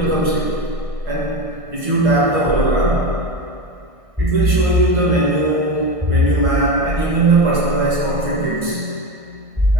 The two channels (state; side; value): late; left; 1.6 ms